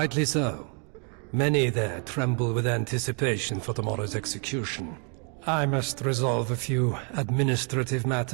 so. Many there tremble with anticipation for tomorrow's execution. I must resolve a few administrative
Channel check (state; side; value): quieter; left; 38.9 dB